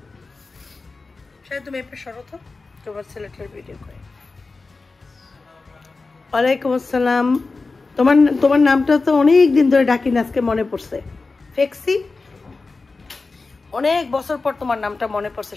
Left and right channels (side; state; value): right; quieter; 3.8 dB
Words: শায়দ তুমি এপে সরো তো, তোমার ছেলেটার ভিডিও করে। ওয়ালাইকুম আসসালাম। তোমার নামটা তো অনেক দিন ধরে ডাকি না, আজকে মনে পড়ছে। ফেক্সি, অনেক বছর পর তোমার নামটা মনে পড়ছে